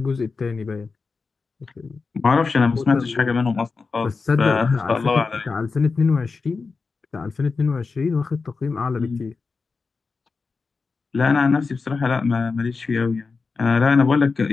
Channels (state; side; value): quieter; right; 4.5 dB